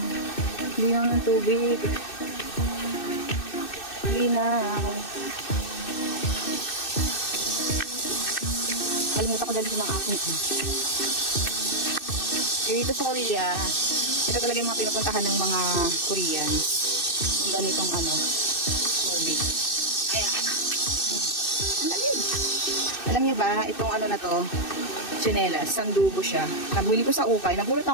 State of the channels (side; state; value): right; late; 2.6 ms